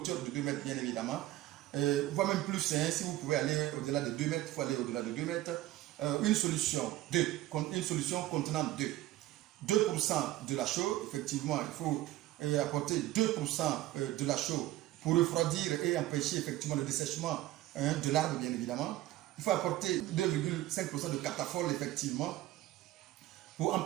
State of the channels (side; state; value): left; quieter; 15.6 dB